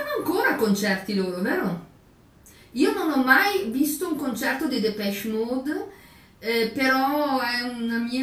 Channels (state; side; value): identical; both; correlation 1.00